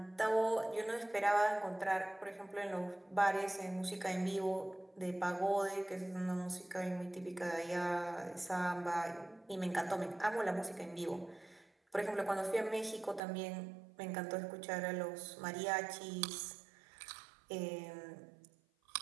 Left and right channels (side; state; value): left; drops out; at 13.2 s